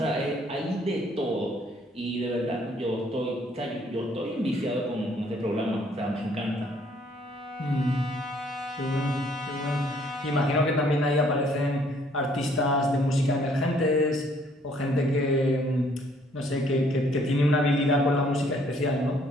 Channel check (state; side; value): normal; both; correlation 0.63